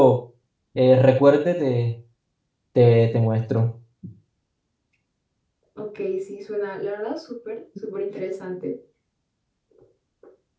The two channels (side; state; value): both; identical; correlation 1.00